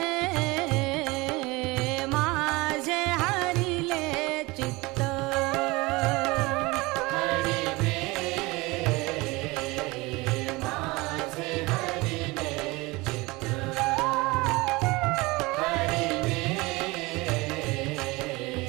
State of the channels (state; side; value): quieter; left; 23.1 dB